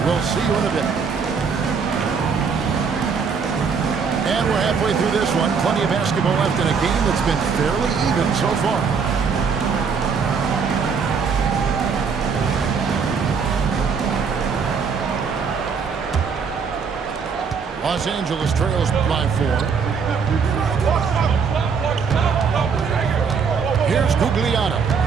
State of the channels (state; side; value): quieter; left; 5.8 dB